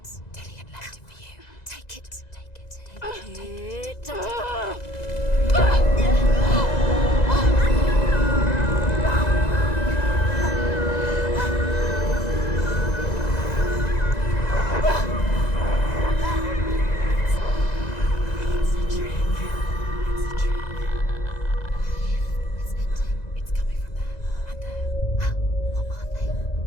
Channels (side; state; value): right; late; 2.0 ms